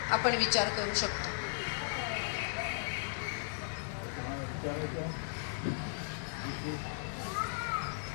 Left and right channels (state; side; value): silent; right; digital silence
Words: आपण विचार करू शकतो.